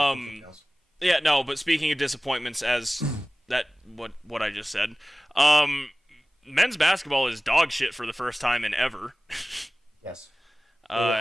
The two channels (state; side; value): normal; both; correlation 0.98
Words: now. Yeah, no. But speaking of disappointments, as what I just said, men's basketball is dog shit for the first time in ever. Yes.